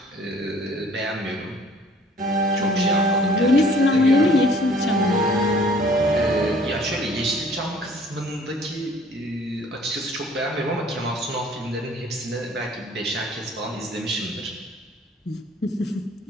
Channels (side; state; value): both; normal; correlation 0.55